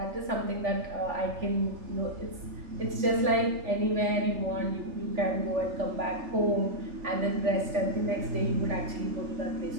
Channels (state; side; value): late; left; 3.5 ms